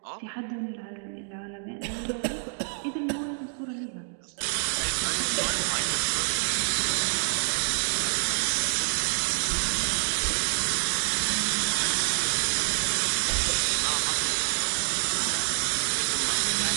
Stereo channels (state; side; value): silent; left; digital silence